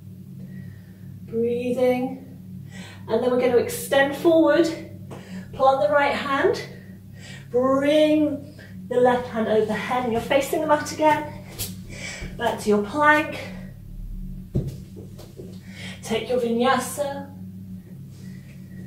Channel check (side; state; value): both; identical; correlation 1.00